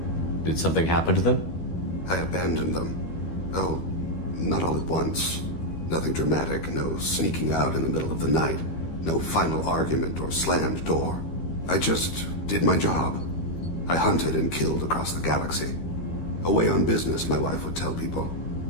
Did something happen to them? I abandoned them. Oh, not all at once. Nothing dramatic, no sneaking out in the middle of the night. No final argument or slammed door. I just did my job. I hunted and killed across the galaxy. Away on business, my wife would tell people.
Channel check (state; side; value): late; right; 13 ms